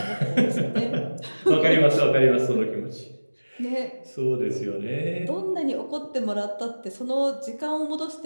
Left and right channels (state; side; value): inverted; both; correlation -1.00